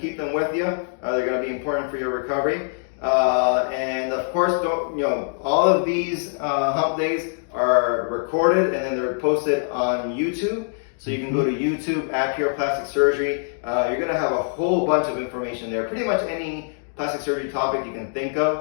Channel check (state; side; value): silent; right; digital silence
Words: them with you. They're going to be important for your recovery. And of course, all of these hump days are recorded and then they're posted on YouTube. So you can go to YouTube at Pure Plastic Surgery. You're going to have a whole bunch of information there. Pretty much any plastic surgery topic you can think